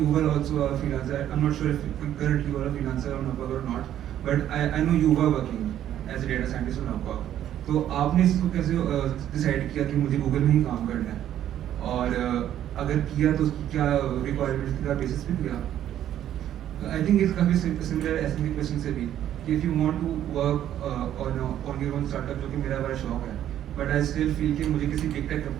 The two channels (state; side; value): quieter; left; 11.3 dB